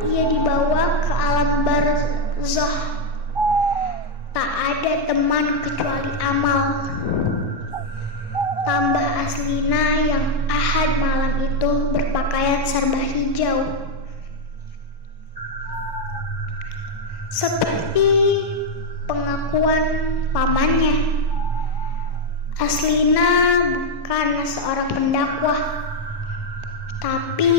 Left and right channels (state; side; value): late; right; 1.1 ms